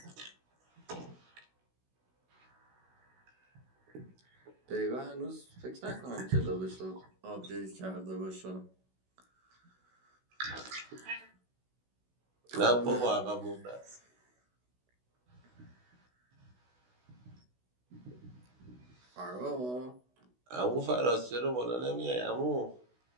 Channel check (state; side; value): late; left; 16 ms